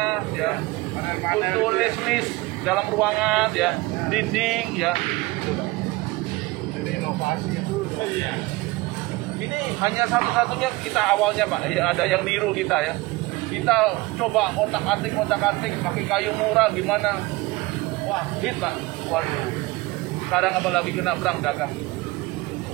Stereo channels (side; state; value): left; quieter; 21.9 dB